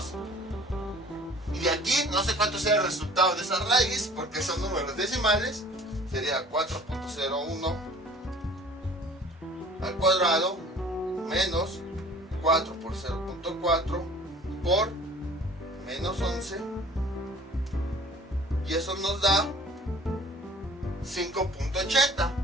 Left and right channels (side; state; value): both; normal; correlation 0.49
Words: Y de aquí no sé cuánto sea el resultado de esa raíz porque son números decimales. Sería 4.01 al cuadrado menos 4 por 0.4 por menos 11, y eso nos da 5.80.